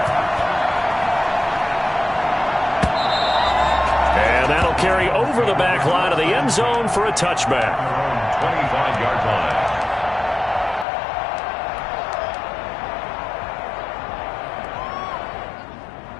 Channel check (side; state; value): right; drops out; at 10.9 s